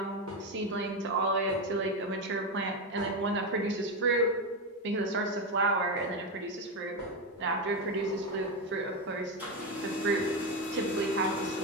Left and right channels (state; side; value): normal; both; correlation 0.12